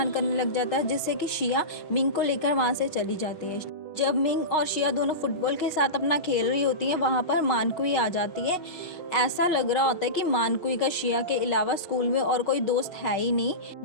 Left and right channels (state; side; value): late; right; 6.3 ms